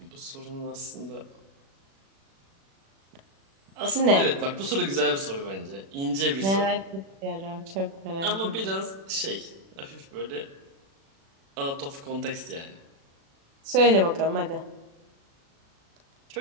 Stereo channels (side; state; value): left; late; 36 ms